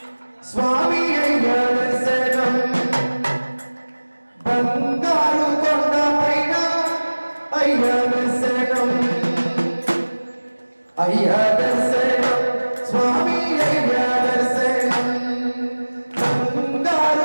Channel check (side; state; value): both; inverted; correlation -1.00